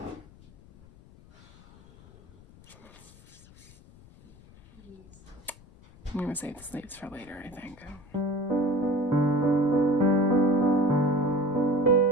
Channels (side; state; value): left; noise; rumble, 24 dB below the sound